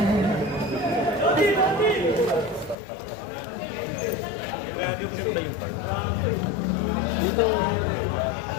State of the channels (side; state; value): right; drops out; at 2.8 s